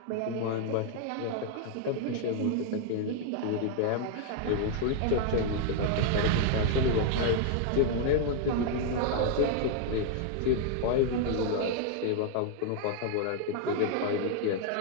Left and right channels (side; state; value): both; different; correlation 0.00